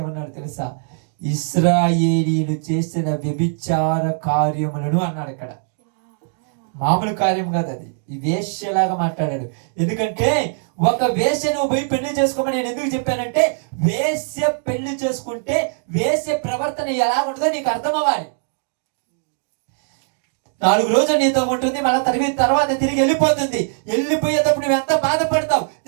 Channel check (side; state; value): left; silent; digital silence